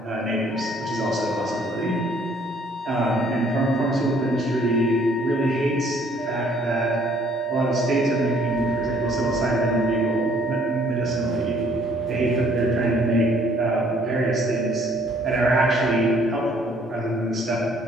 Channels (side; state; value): both; normal; correlation 0.61